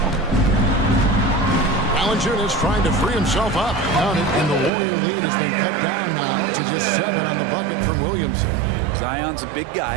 Valanciunas trying to free himself up. Count it, and the Warrior lead has been cut down now to just 7 on the bucket from Williamson. Zion's a big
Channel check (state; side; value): drops out; left; at 4.7 s